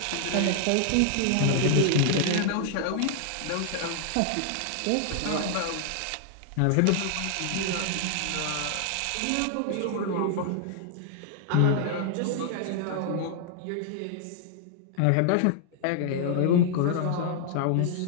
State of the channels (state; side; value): different; both; correlation 0.00